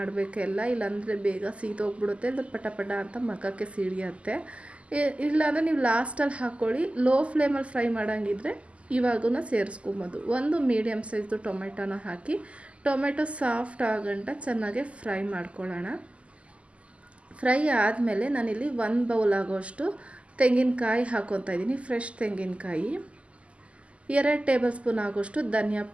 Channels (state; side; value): late; left; 0.059 ms